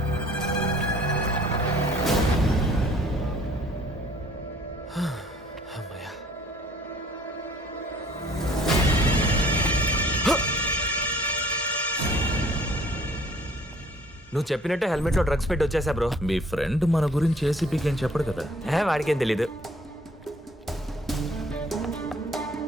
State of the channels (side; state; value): both; normal; correlation 0.56